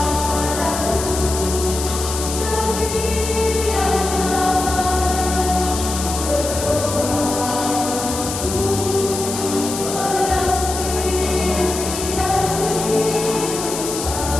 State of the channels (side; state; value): left; noise; hiss, 6 dB below the sound